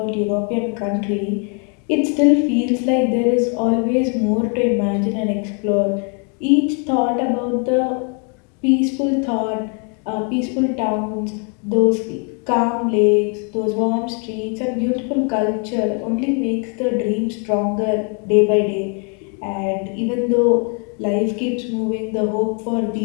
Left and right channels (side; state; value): right; quieter; 38.8 dB